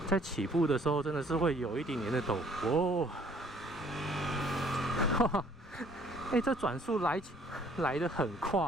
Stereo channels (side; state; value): both; normal; correlation 0.59